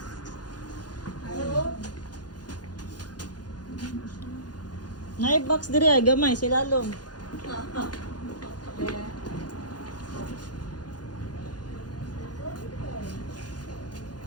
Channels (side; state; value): right; late; 0.69 ms